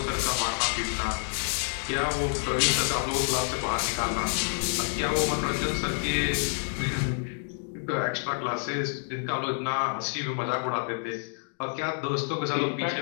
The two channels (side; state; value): right; silent; 59 dB below the other